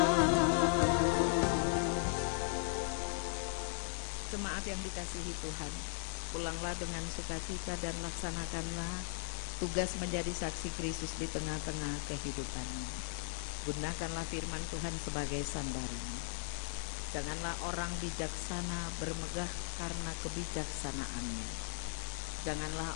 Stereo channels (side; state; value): right; silent; digital silence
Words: Jemaat yang dikasihi Tuhan, pulanglah dengan sukacita dan laksanakanlah tugas menjadi saksi Kristus di tengah-tengah kehidupanmu. Gunakanlah firman Tuhan sebagai sandaran. Janganlah orang bijaksana bermegah karena kebijaksanaannya.